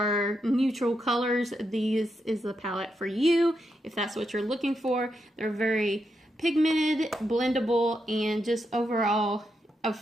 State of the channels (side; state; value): both; normal; correlation 0.83